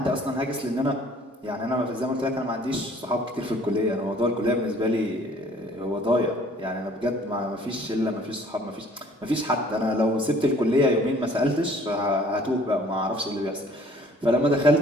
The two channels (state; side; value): normal; both; correlation 0.55